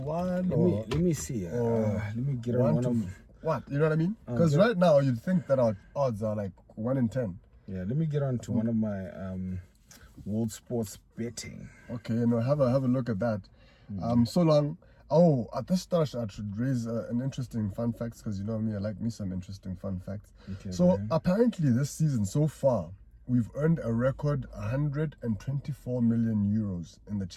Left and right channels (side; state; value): both; identical; correlation 1.00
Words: let me see. Let me get on one of what, you know what I mean? Because right now you'd think that our odds are like 1 in 10. Yeah, let me get on to one of my World Sports betting. Okay, have a look at that. So long. Oh, at this start I should raise an interesting fun facts, because you know me, I like me some interesting fun facts. Okay, so apparently this season so far we've earned a record 124 million euros in the